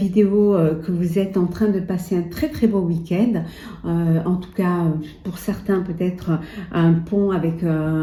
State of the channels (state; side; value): identical; both; correlation 1.00